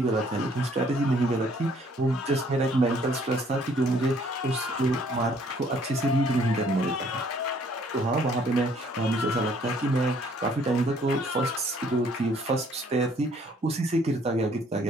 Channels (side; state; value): both; normal; correlation 0.62